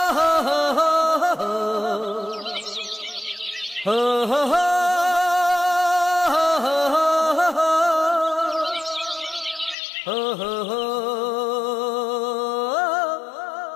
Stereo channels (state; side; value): drops out; right; at 9.8 s